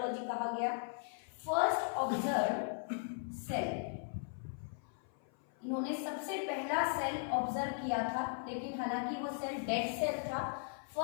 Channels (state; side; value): silent; right; 53 dB below the other